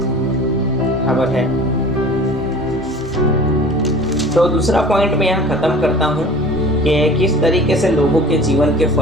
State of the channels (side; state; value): both; normal; correlation 0.42